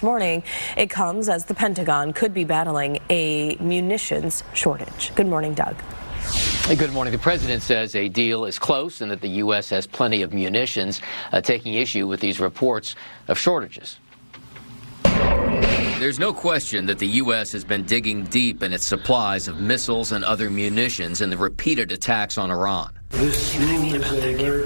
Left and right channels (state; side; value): inverted; both; correlation -1.00